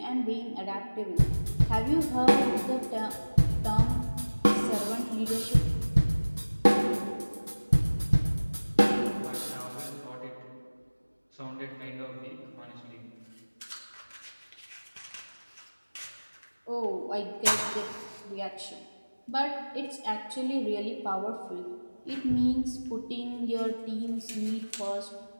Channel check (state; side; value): inverted; both; correlation -1.00